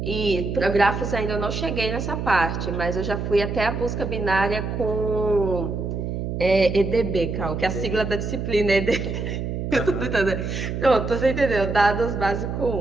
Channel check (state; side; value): noise; right; hum, 3 dB below the sound